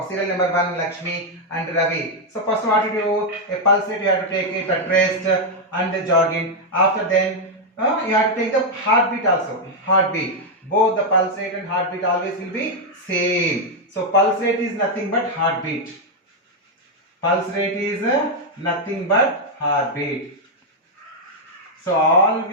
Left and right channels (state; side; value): normal; both; correlation 0.00